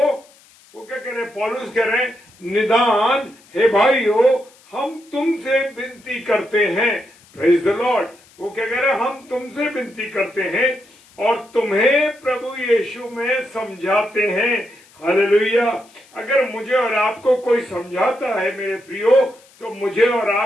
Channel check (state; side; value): noise; left; hiss, 28 dB below the sound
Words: वो क्या कह रहे हैं? पौलुस कह रहे हैं, निदान हे भाइयों हम तुमसे विनती करते हैं। Praise the Lord. वो क्या कह रहे हैं? हम तुमसे विनती करते हैं और तुम्हें प्रभु यीशु में समझाते हैं। हालेलुया। अगर मुझे और आपको कोई समझाता है मेरे प्रियो, तो मुझे और